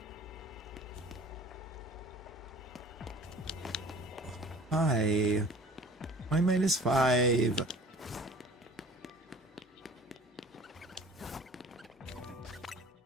Hi. Why -5?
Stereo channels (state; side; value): normal; both; correlation 0.45